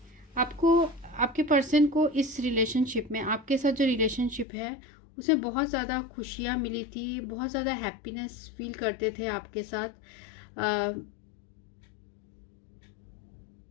आपको आपके पर्सन को इस रिलेशनशिप में, आपके साथ जो रिलेशनशिप है उसमें बहुत ज़्यादा खुशियाँ मिली थी, बहुत ज़्यादा हैप्पीनेस फील करते थे आपके साथ।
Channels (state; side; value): drops out; right; at 4.5 s